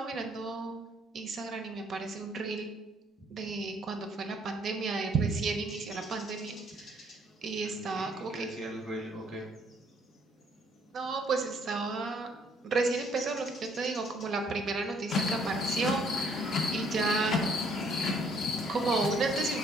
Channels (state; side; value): normal; both; correlation 0.64